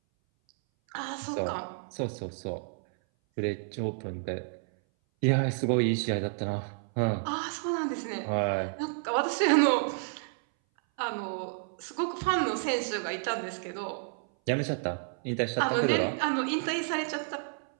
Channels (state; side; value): silent; left; 57 dB below the other